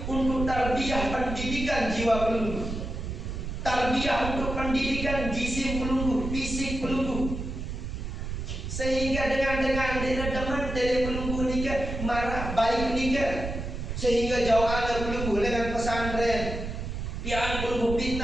untuk tarbiyah pendidikan jiwa pelunggu, tarbiyah untuk pendidikan jisim pelunggu, fisik pelunggu. Sehingga dengan deman dari pelunggu nikah marah baik nikah, sehingga jauh ada pelunggu dengan pesantren, pian pelunggu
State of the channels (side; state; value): right; noise; rumble, 5 dB below the sound